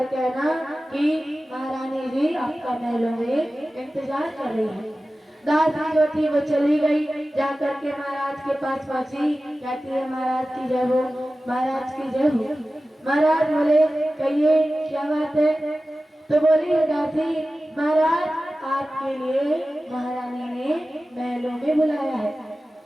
कहना कि महारानी जी आपका महलों में इंतजार कर रही है। दासी जो थी वो चली गई, जाकर के महाराज के पास पहुंची, कहती है, महाराज की जय हो, महाराज की जय हो। महाराज बोले, कहिए क्या बात है। तो बोली दासी, महाराज आपके लिए महारानी ने महलों में बुलाया है।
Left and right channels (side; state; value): both; normal; correlation 0.95